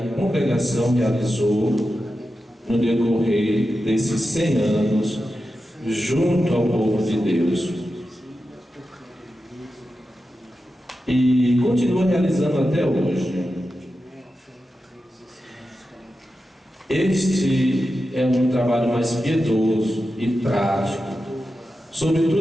congregação realizou no decorrer desses 100 anos junto ao povo de Deus. E continua realizando até hoje. Este é um trabalho mais piedoso e prático,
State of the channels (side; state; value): both; normal; correlation 0.91